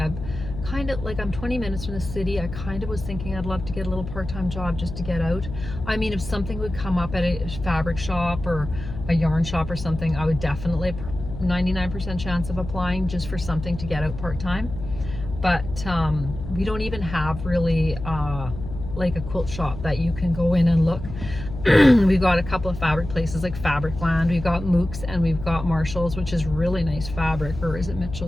I've kind of, like, I'm 20 minutes from the city. I kind of was thinking I'd love to get a little part-time job just to get out. I mean, if something would come up at a fabric shop or a yarn shop or something, I would definitely 99% chance of applying just for something to get out part-time. But we don't even have really like a quilt shop that you can go in and look. We've got a couple of fabric places like Fabricland, we've got Mooks, and we've got Marshall's, which is really nice fabric, or is it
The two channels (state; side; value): noise; left; hum, 9 dB below the sound